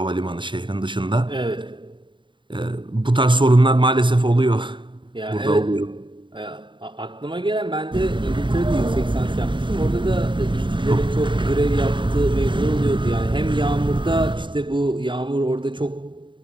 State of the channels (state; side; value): late; left; 0.23 ms